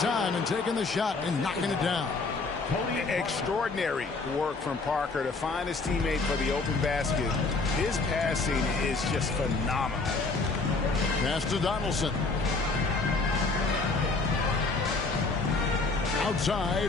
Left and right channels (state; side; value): quieter; right; 3.8 dB